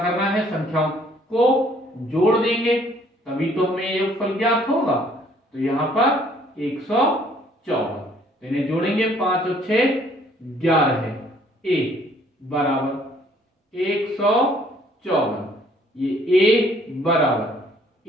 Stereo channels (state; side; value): normal; both; correlation 0.61